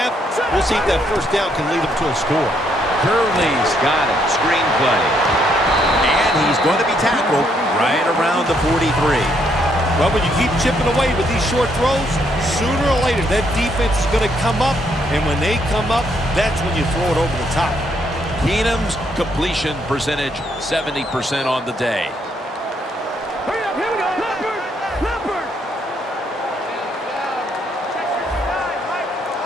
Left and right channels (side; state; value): both; normal; correlation 0.72